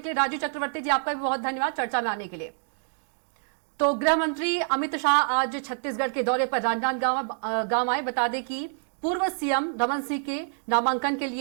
लिए। राजू चक्रवर्ती जी, आपका भी बहुत धन्यवाद चर्चा में आने के लिए। तो गृह मंत्री अमित शाह आज छत्तीसगढ़ के दौरे पर राजनांदगांव आए। बता दें कि पूर्व सीएम रमन सिंह के नामांकन के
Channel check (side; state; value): left; silent; digital silence